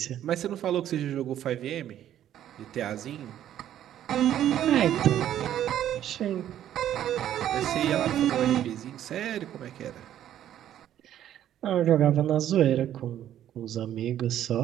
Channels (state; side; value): quieter; left; 11.3 dB